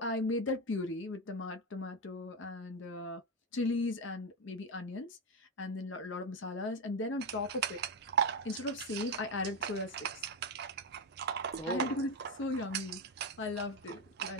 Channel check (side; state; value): both; normal; correlation 0.09